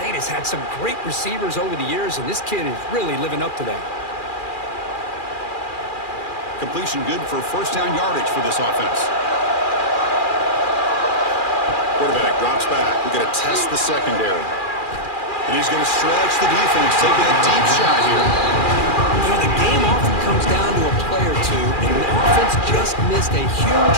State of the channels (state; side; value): late; right; 2.4 ms